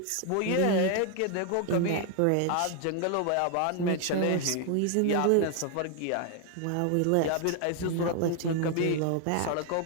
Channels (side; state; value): both; different; correlation 0.00